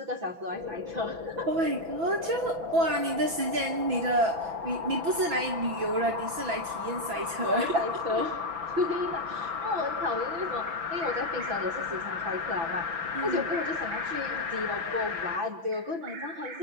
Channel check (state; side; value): late; left; 6.0 ms